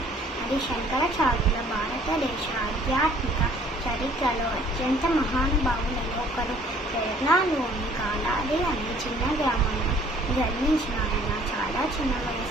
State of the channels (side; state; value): both; normal; correlation 0.56